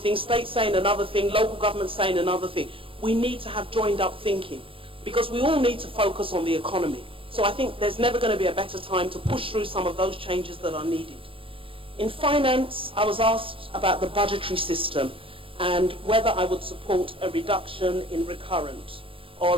state saying another thing, local government saying another thing. We need to have joined up thinking, because we all need to focus on the economy. So I think there's never going to be a better time to push through some of those changes that are needed. In finance, I was asked about the budgetary system and whether I would support a reduction in recurrent or a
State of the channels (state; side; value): late; left; 0.26 ms